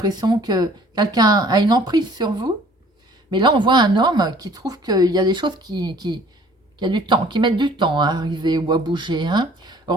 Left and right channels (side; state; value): both; normal; correlation 0.54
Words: que quelqu'un a une emprise sur vous. Mais là, on voit un homme qui trouve qu'il y a des choses qui a du temps, qui mettent du temps à arriver ou à bouger. Hein.